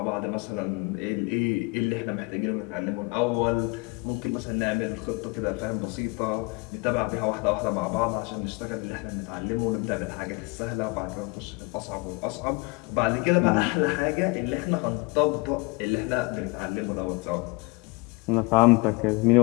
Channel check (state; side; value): quieter; right; 27.1 dB